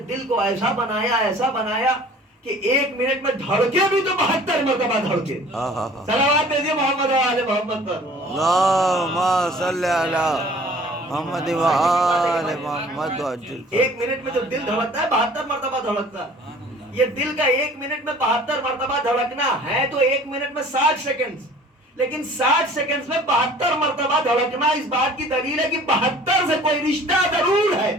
دل کو ایسا بنایا کہ ایک منٹ میں دھڑکے بھی تو 72 مرتبہ دھڑکے. صلوات بھیجیے محمد و آل محمد پر. اللہم صلی علی محمد و آل محمد. ایک منٹ میں جو دل دھڑکتا ہے 72 مرتبہ دھڑکتا ہے. یہ دل کا ایک منٹ میں 72 مرتبہ دھڑکنا ہے تو ایک منٹ میں 60 سیکنڈ، لیکن 60 سیکنڈ میں 72 مرتبہ دھڑکنا اس بات کی دلیل ہے کہ 72 سے کوئی رشتہ ضرور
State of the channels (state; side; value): normal; both; correlation 0.49